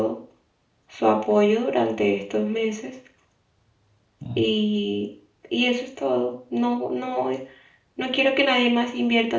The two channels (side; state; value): both; identical; correlation 1.00